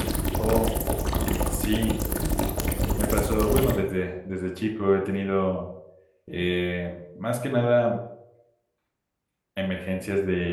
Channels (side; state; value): both; identical; correlation 1.00